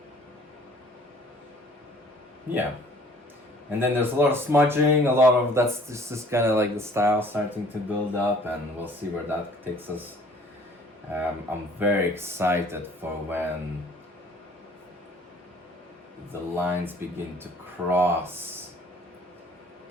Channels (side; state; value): both; normal; correlation 0.54